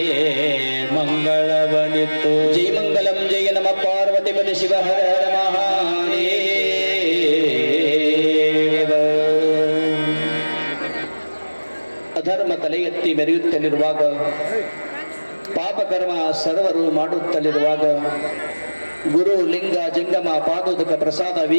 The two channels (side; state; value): both; inverted; correlation -1.00